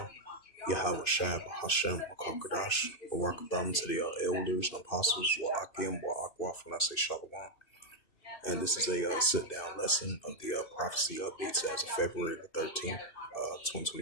Yahweh Shab, Hashem, Makakadash, Barakatham to the elders and apostles, Wa'akim, Wa'akwaf, when I say Shalom. And this is a sit-down lesson of the prophecy updates as of February the 13th,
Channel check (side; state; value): right; late; 2.6 ms